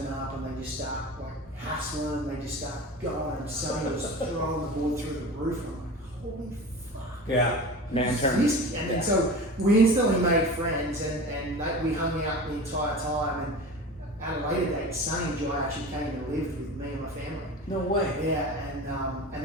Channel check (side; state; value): both; normal; correlation 0.33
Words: up and they just start like hassling, they just start going, and Sonny was throwing the board through the roof, and I'm like, holy fuck. Yeah. Man turn. And so we instantly made friends, and we hung out the entire time. And at a later date, Sonny and Jai actually came and lived with me and my family. No way. Yeah, and